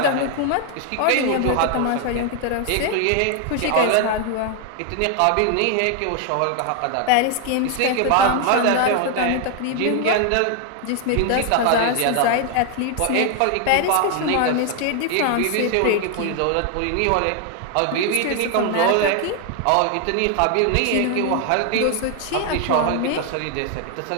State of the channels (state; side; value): different; both; correlation 0.00